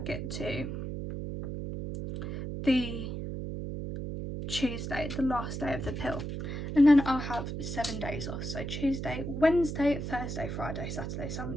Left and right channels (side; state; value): right; noise; hum, 5 dB below the sound